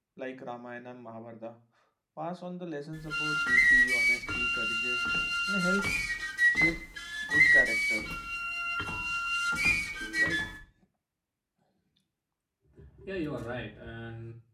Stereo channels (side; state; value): both; identical; correlation 1.00